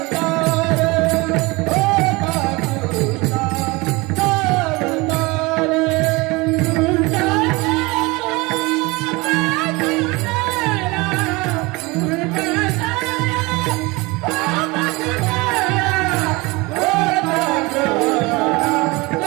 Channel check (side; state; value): left; quieter; 24.2 dB